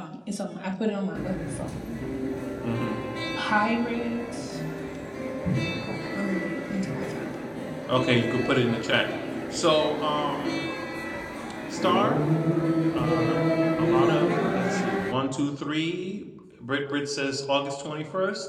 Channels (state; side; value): identical; both; correlation 1.00